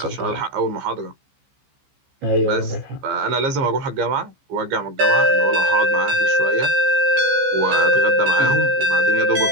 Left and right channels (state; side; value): late; left; 15 ms